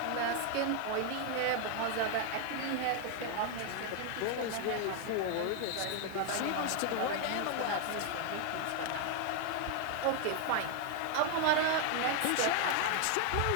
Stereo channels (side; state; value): both; different; correlation 0.00